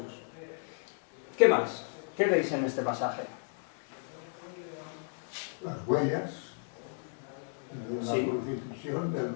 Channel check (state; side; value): silent; right; 55 dB below the other